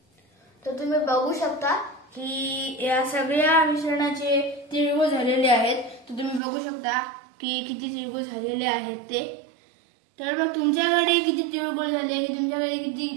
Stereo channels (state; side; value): drops out; left; at 6.4 s